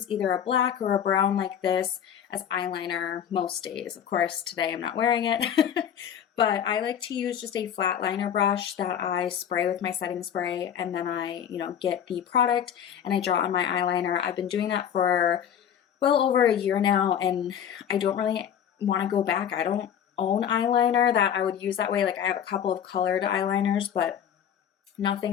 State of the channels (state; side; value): quieter; right; 9.0 dB